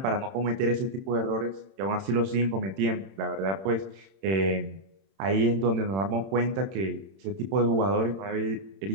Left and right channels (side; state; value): left; late; 31 ms